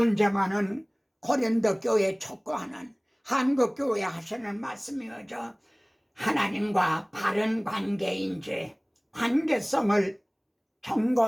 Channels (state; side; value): identical; both; correlation 1.00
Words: 많은 고린도 교회 촉구하는 한국 교회 하시는 말씀이죠. 하나님과 바른 관계인지 관계성을